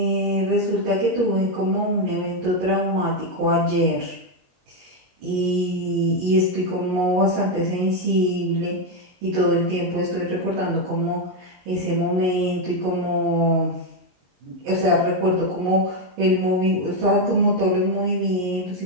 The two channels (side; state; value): left; late; 22 ms